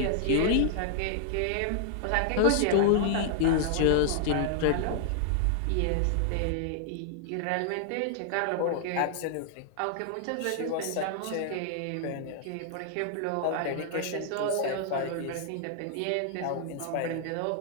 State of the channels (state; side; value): different; both; correlation -0.01